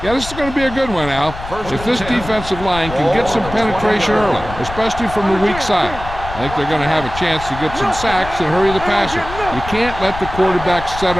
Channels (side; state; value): left; noise; rumble, 11 dB below the sound